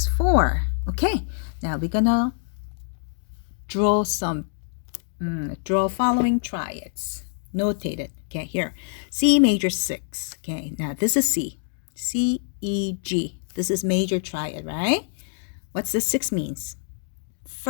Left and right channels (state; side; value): silent; right; digital silence